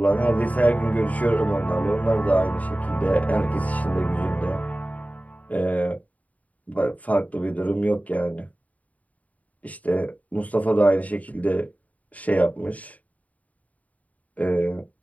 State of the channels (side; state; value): right; late; 0.071 ms